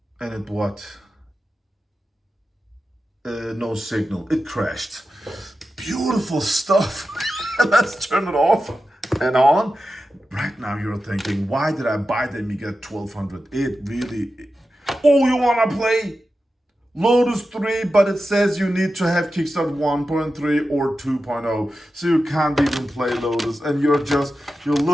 what? No signal. It crashed. Beautiful stuff. Let's turn it off and on. Right now you're thinking, why did I buy the Amiga 1200? It really... Oh, you want to play Lotus 3, but it says you need to have Kickstart 1.3 or 2.0. So you can't even play Lotus. And you're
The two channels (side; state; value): both; normal; correlation 0.92